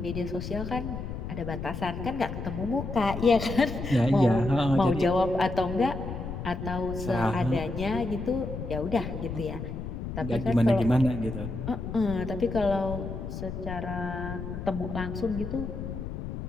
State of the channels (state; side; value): noise; left; rumble, 6 dB below the sound